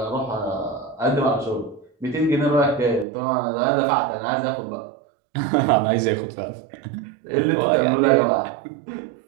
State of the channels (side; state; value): left; drops out; at 3.1 s